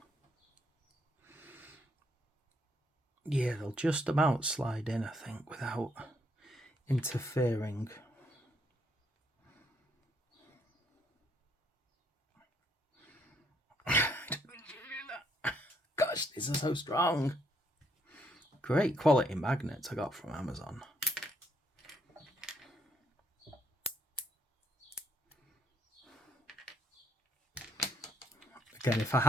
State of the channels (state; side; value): normal; both; correlation 0.71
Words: Yeah, they'll just about slide in, I think, without interfering. Gosh, these are so strong. Great quality magnets I got from Amazon. Again, if I